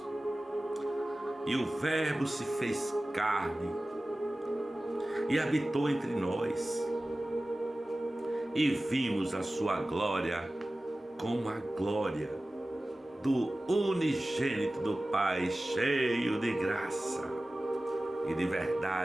E o Verbo se fez carne e habitou entre nós, e vimos a sua glória como a glória do unigênito do Pai, cheio de graça e de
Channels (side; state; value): both; normal; correlation 0.96